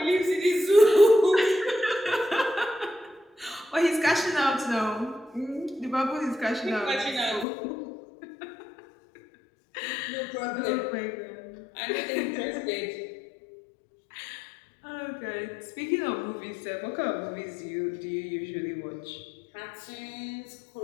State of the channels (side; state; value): right; drops out; at 7.5 s